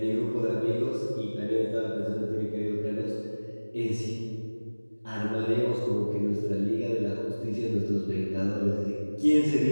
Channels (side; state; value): both; inverted; correlation -1.00